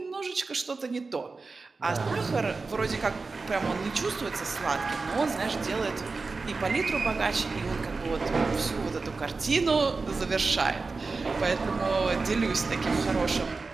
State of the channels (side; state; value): left; quieter; 4.1 dB